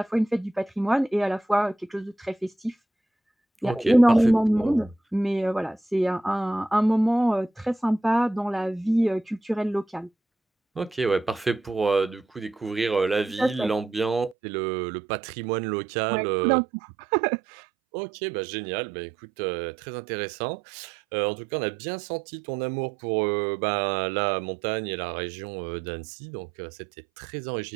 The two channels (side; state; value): left; drops out; at 14.4 s